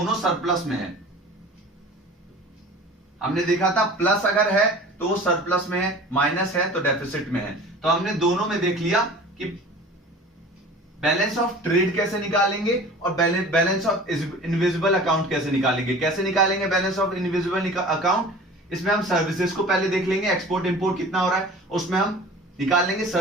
सरप्लस में है। हमने देखा था प्लस अगर है तो वो सरप्लस में है, माइनस है तो डेफिसिट में है। तो हमने दोनों में देख लिया कि बैलेंस ऑफ ट्रेड कैसे निकालेंगे और बैलेंस ऑफ इनविजिबल अकाउंट कैसे निकालेंगे। कैसे निकालेंगे बैलेंस ऑफ इनविजिबल अकाउंट, इसमें हम सर्विसेज को पहले देख लेंगे, एक्सपोर्ट इंपोर्ट कितना हो रहा है, उसमें हम निकाल लेंगे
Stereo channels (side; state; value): both; normal; correlation 0.41